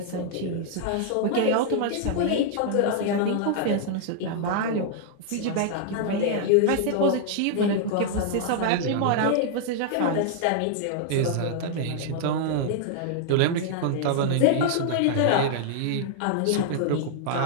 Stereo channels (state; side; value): different; both; correlation -0.01